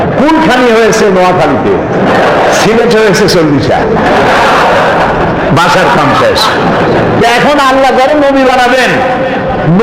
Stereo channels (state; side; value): identical; both; correlation 1.00